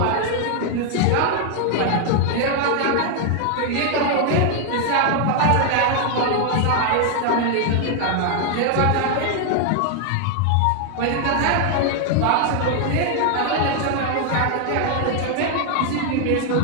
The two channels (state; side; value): different; both; correlation 0.00